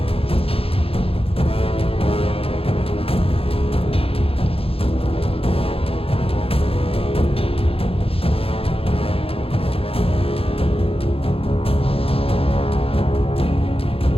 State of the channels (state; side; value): late; right; 0.27 ms